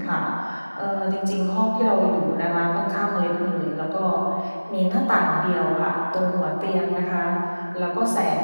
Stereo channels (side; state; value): both; inverted; correlation -1.00